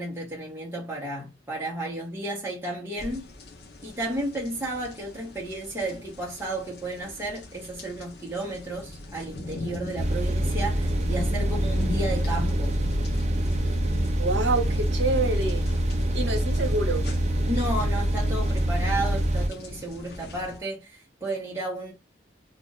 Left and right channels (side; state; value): both; normal; correlation 0.71